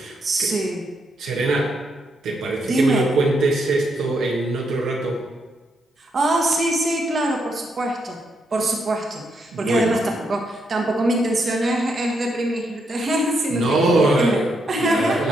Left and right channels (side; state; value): both; normal; correlation 0.79